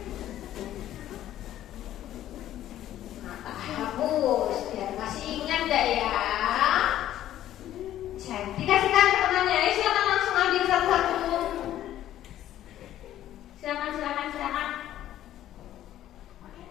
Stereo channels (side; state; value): right; quieter; 12.5 dB